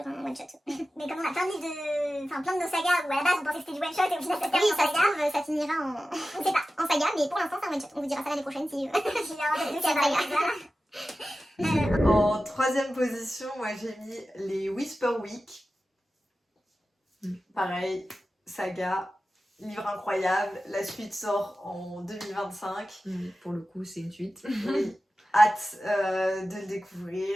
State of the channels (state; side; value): normal; both; correlation 0.94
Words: un one shot. Mais comme on a plein de livres plein de nos sagas où à la base on pensait que c'était du one shot et au final ça se termine en saga, ça finira en. On sait pas, en saga, mais pour l'instant c'est un one shot. On vous dira ça l'année prochaine si il y a un saga. En 3e position, moi j'ai mis les Whisper Week. Pareil, saga. Livre incroyable, la suite sort en 2025. Pour le coup, c'est une suite. Oui, hâte de le